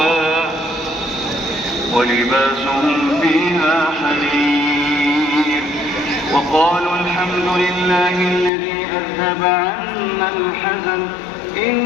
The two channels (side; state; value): right; drops out; at 8.5 s